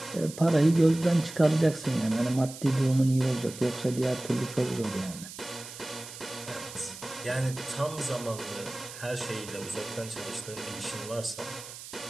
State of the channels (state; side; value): noise; right; hiss, 13 dB below the sound